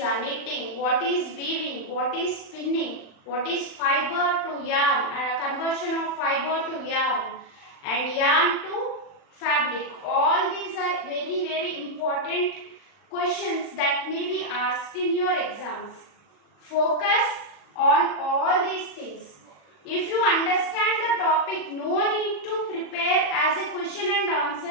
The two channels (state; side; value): late; right; 40 ms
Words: what is weaving, what is spinning, what is fiber to yarn, conversion of fiber to yarn, and yarn to fabric. All these are very, very important questions that may be asked in your exams. Focus on all these things. If you understand the topic, no need to prepare as a question and